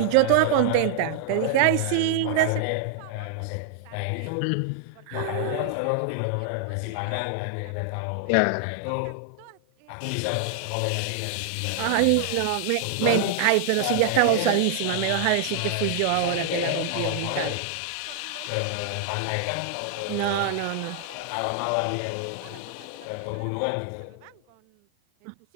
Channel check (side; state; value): both; different; correlation -0.01